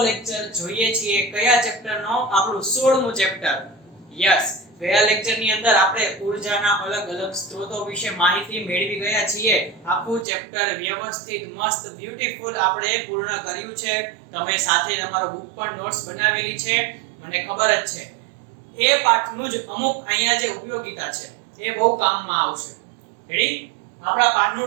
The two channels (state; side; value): drops out; left; at 10.2 s